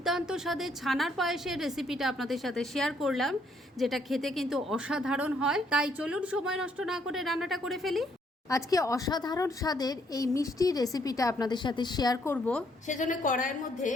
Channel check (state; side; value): normal; both; correlation 0.70